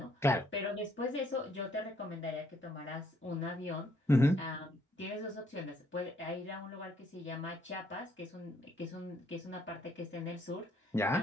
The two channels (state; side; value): normal; both; correlation 0.69